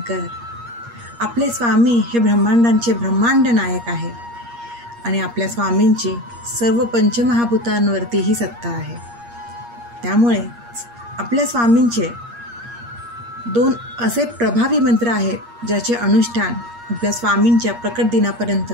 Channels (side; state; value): left; late; 8.5 ms